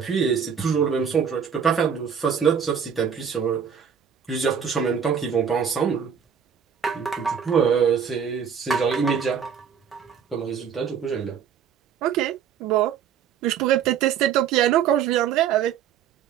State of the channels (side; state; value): left; quieter; 7.7 dB